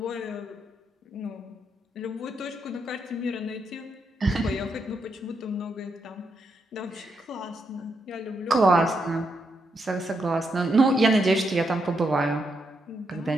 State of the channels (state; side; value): normal; both; correlation 0.81